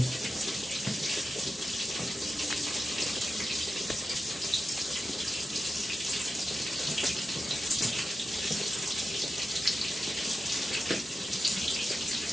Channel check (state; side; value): normal; both; correlation 0.90